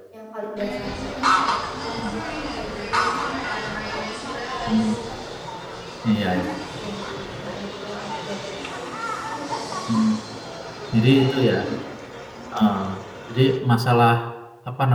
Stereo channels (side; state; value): both; identical; correlation 1.00